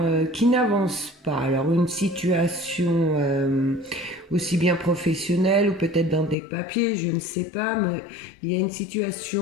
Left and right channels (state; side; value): drops out; right; at 6.4 s